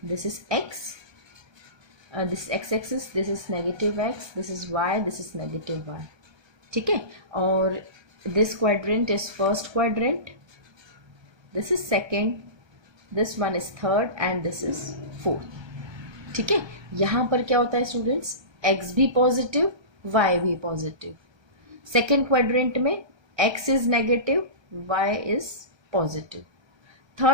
This is x, this is x-axis, this is negative x, this is y, this is negative y. ठीक है. और this quadrant is first quadrant, this is second, this one is third and this is fourth. ठीक है. यहाँ पर क्या होता है स्टूडेंट्स, x भी पॉजिटिव, y भी पॉजिटिव. सेकेंड क्वाड्रेंट में x is negative, y is positive.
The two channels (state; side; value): late; left; 1.3 ms